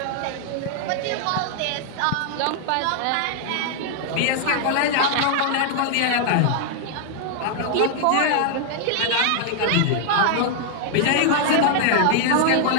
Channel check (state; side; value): different; both; correlation 0.00